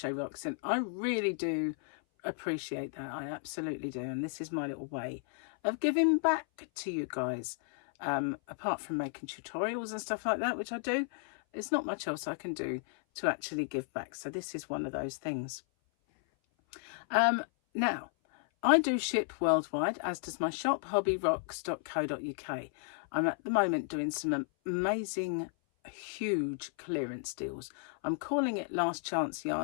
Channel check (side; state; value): right; silent; 55 dB below the other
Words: Rocks, and I really do appreciate that. I absolutely do. And this is my little way of giving back to you guys. Apart from making tutorials and stuff like that, which I do, it's not much else I can do to actually give back. So this is one of those things. Now, I do ship worldwide, as does my shop, hobbyrocks.co.uk. I'm at the moment doing some amazing, huge clearance deals. I'm calling it last chance